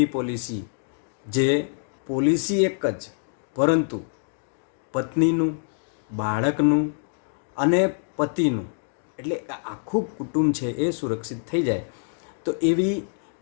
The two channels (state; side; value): silent; right; digital silence